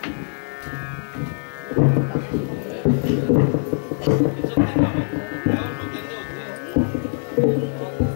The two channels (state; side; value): silent; right; 64 dB below the other